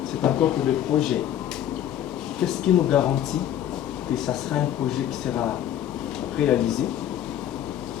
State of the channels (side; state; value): right; quieter; 11.0 dB